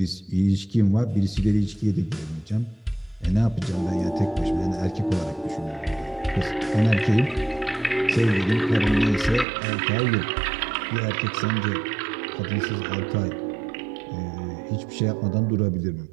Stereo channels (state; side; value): drops out; left; at 9.5 s